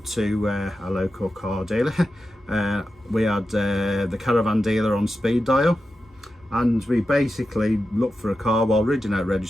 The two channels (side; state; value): both; normal; correlation 0.91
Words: to a local car dealer. We had the caravan dealer on speed dial, and we basically looked for a car while reading out